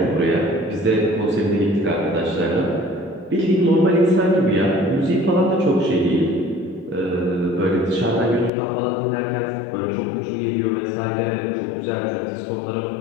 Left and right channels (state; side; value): drops out; right; at 8.5 s